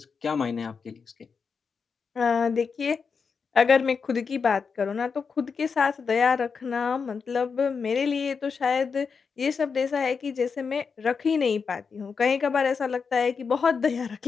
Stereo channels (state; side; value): quieter; right; 5.6 dB